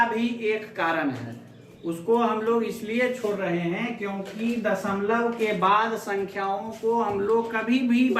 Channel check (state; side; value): identical; both; correlation 1.00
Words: भी एक कारण है। उसको हम लोग इसलिए छोड़ रहे हैं क्योंकि दशमलव के बाद संख्याओं को हम लोग कभी भी